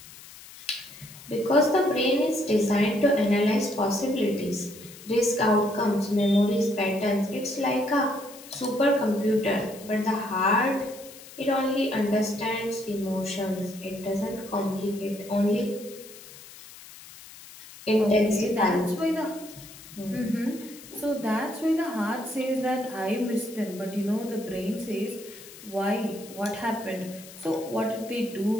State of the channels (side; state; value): left; noise; hiss, 18 dB below the sound